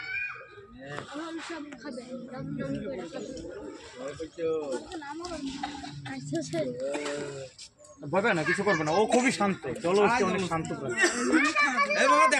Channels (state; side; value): identical; both; correlation 1.00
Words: সব খাবে ভয় পায় না, কিছু করবে না, ও খুবই শান্ত, জলহস্তি অনেক শান্ত প্রাণী।